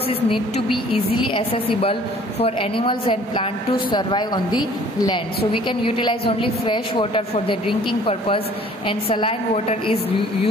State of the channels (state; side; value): normal; both; correlation 0.54